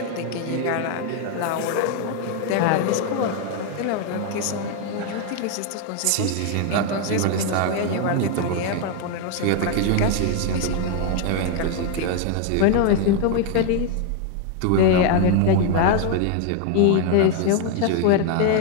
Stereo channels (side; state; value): both; different; correlation 0.01